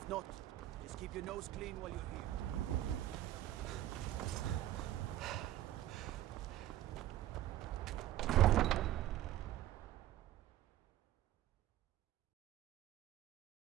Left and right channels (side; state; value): left; quieter; 13.7 dB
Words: not, just keep your nose clean while you're here.